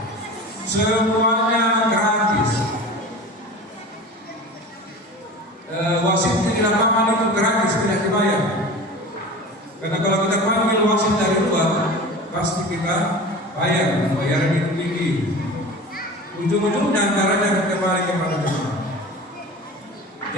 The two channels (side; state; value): both; normal; correlation 0.35